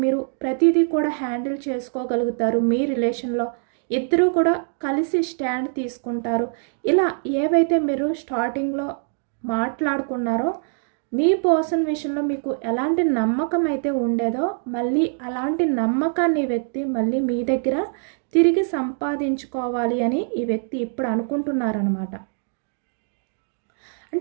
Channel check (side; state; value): left; silent; 63 dB below the other